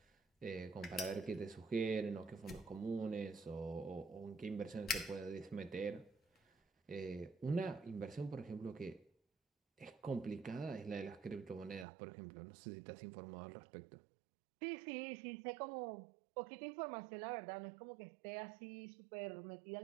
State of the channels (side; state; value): left; drops out; at 11.9 s